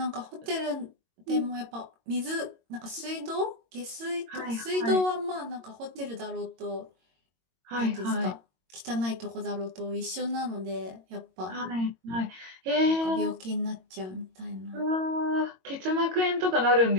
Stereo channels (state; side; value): late; left; 22 ms